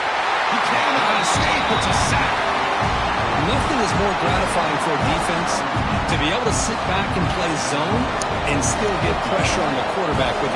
He can't escape. It's a sack. Nothing is more gratifying for a defense to be able to sit back and play zone and still get pressure on the quarterback with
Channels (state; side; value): identical; both; correlation 1.00